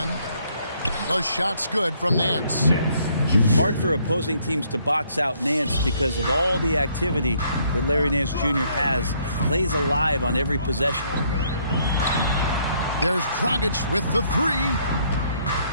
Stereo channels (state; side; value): inverted; both; correlation -0.67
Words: The shot's good from Nance. Hard for opposing teams to box out Nance because of all the activity that Larry Nance Jr. has. Plays alive on every possession. There's Dragic with the 3.